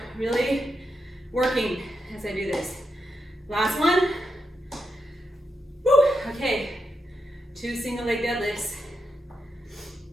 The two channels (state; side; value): normal; both; correlation 0.84